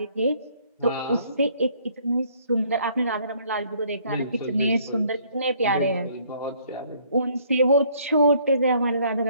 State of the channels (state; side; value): inverted; both; correlation -0.63